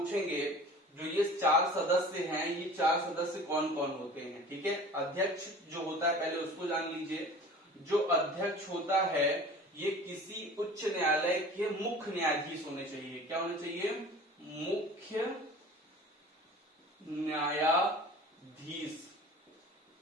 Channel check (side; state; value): both; normal; correlation 0.42